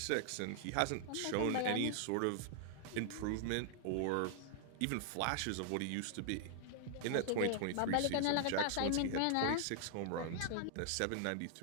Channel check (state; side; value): different; both; correlation 0.00